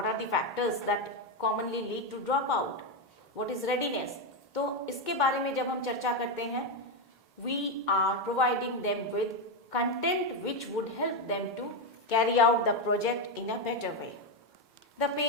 are the factors that commonly lead to drop out, what is readiness. तो इसके बारे में जब हम चर्चा करते हैं, we are providing them with content which would help them to carry out the project in a better way. The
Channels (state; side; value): normal; both; correlation 0.07